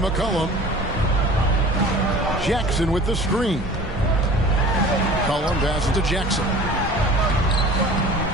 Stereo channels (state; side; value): normal; both; correlation 0.43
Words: Jackson with the screen. McCollum passes to Jackson.